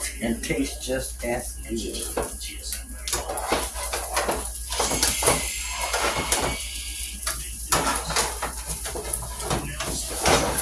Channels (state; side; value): identical; both; correlation 1.00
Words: and taste just as good.